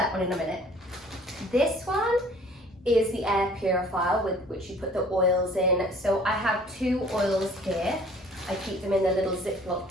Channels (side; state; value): both; normal; correlation 0.53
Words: one in a minute. This one is the air purifier with which you put the oils in. So I have 2 oils here. I keep them in a little Ziploc